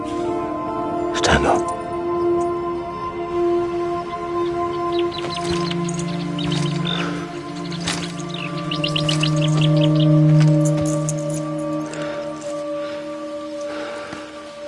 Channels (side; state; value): both; identical; correlation 1.00